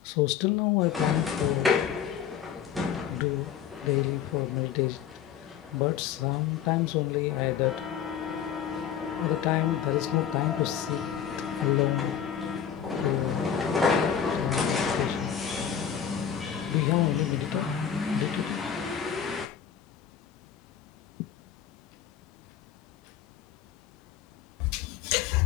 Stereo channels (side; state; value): right; quieter; 8.8 dB